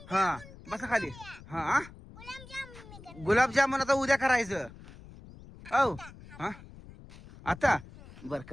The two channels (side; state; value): left; noise; rumble, 18 dB below the sound